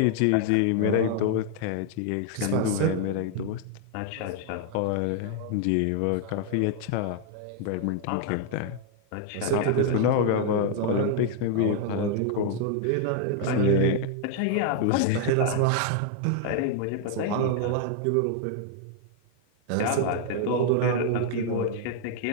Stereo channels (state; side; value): different; both; correlation 0.00